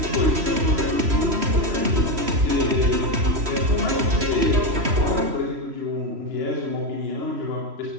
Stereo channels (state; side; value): late; left; 3.0 ms